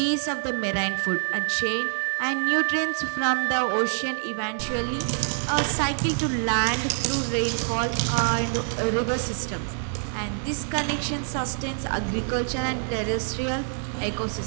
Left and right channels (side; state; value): left; silent; 57 dB below the other